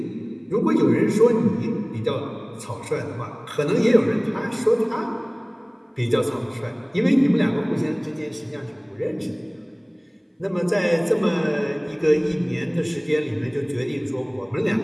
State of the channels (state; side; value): identical; both; correlation 1.00